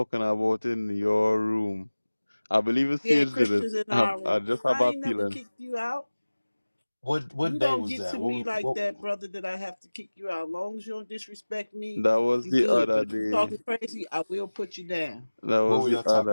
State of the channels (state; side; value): inverted; both; correlation -1.00